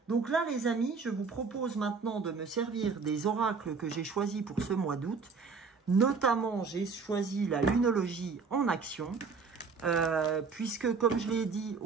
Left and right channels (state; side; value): quieter; left; 5.0 dB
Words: Donc là les amis, je vous propose maintenant de me servir des oracles que j'ai choisis pour ce mois d'août. Notamment, j'ai choisi la lunologie en action. Puisque comme je l'ai dit